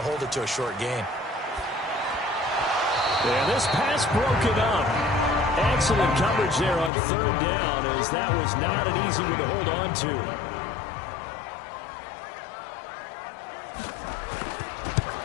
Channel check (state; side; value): drops out; right; at 6.9 s